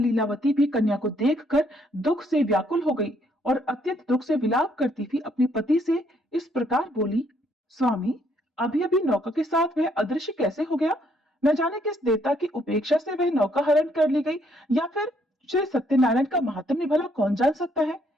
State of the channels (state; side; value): normal; both; correlation 0.69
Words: भी कन्या को देखकर दुख से व्याकुल हो गई और अत्यंत दुख से विलाप करती हुई अपने पति से इस प्रकार बोली, स्वामी, अभी अभी नौका के साथ वह अदृश्य कैसे हो गया? न जाने किस देवता की उपेक्षा से वह नौका हरण कर ली गई, या फिर श्री सत्यनारायण का महात्म्य भला कौन जान सकता है।